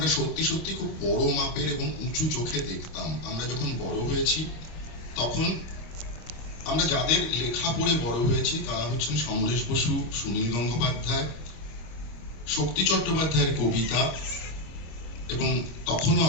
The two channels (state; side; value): late; right; 25 ms